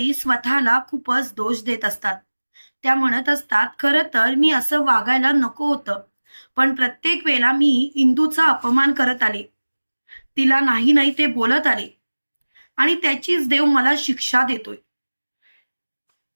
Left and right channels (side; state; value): both; inverted; correlation -1.00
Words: स्वतःला खूपच दोष देत असतात. त्या म्हणत असतात, "खरं तर मी असं वागायला नको होतं. पण प्रत्येक वेळेला मी इंदूचा अपमान करत आले. तिला नाही नाही ते बोलत आले आणि त्याचीच देव मला शिक्षा देतोय."